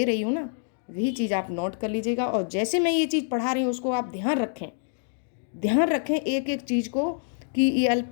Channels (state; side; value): silent; right; digital silence